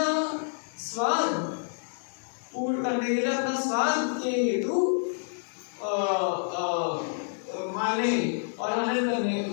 स्वाद पूर्ण करने के लिए, अपना स्वाद के हेतु माने और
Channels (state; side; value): silent; right; digital silence